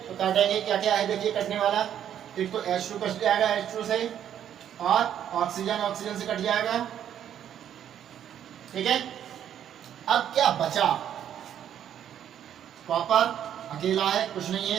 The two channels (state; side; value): quieter; left; 9.9 dB